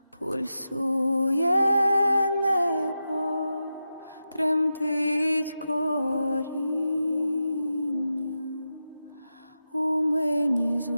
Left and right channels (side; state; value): both; inverted; correlation -0.90